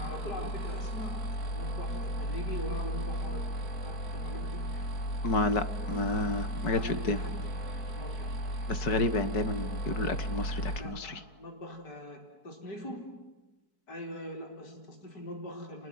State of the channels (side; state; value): right; late; 4.6 ms